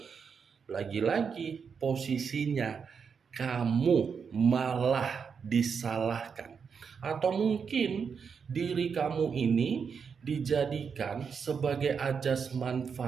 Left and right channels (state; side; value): quieter; left; 6.2 dB